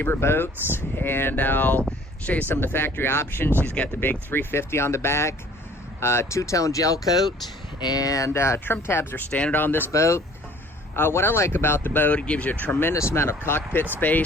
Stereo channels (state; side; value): normal; both; correlation 0.53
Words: boats, and I'll show you some of the factory options. She's got the big 350 on the back, two-tone gel coat, and trim tabs are standard on this boat. What I like about the boat, it gives you a tremendous amount of cockpit